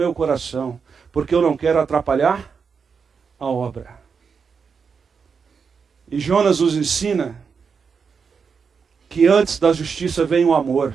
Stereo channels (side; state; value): left; quieter; 5.8 dB